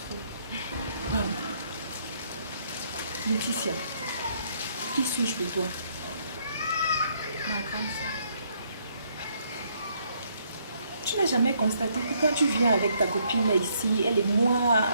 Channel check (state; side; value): inverted; both; correlation -0.70